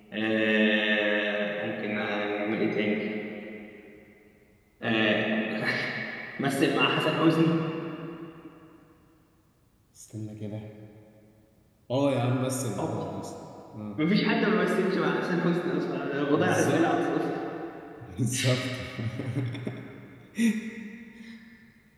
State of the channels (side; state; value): both; identical; correlation 1.00